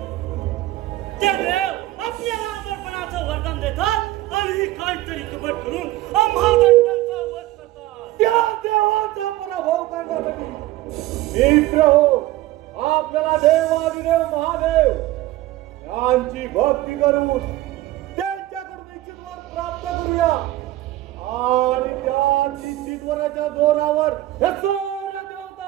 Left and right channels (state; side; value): quieter; left; 16.3 dB